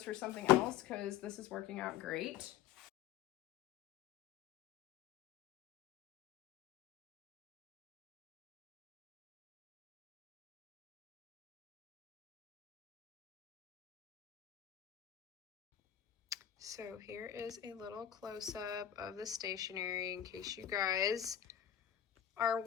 for something else because this is working out great. So here is a little close-up of the stationery in case you guys are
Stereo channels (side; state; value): right; quieter; 10.6 dB